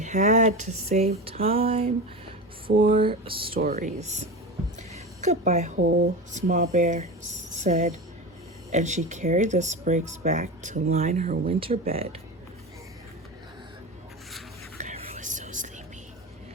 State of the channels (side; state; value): both; normal; correlation 0.25